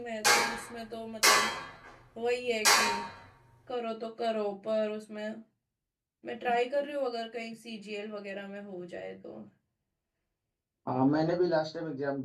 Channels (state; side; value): identical; both; correlation 1.00